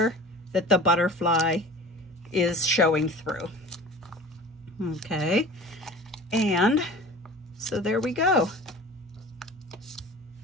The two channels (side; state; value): both; normal; correlation 0.40